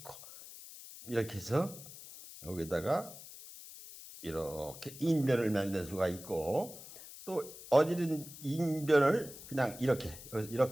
이렇게 해서 여기다가 이렇게 인변을 만들 수가 있고 또 어지른 인변을 그냥 이렇게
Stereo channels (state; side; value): noise; left; hiss, 15 dB below the sound